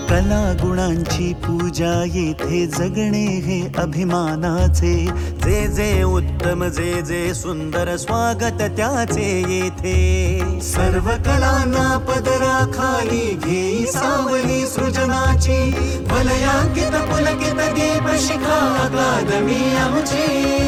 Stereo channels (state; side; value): identical; both; correlation 1.00